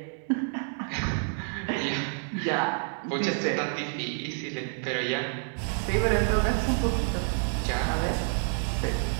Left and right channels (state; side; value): silent; left; 59 dB below the other